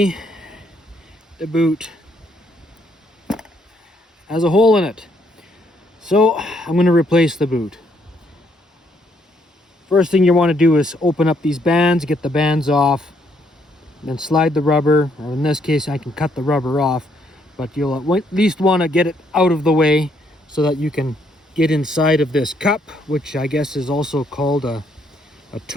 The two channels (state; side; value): normal; both; correlation 0.71